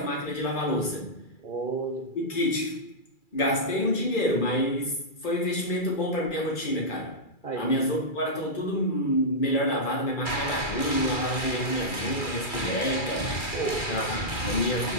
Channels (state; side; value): late; right; 2.3 ms